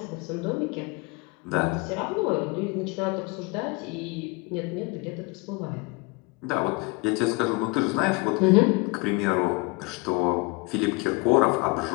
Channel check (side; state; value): right; quieter; 26.6 dB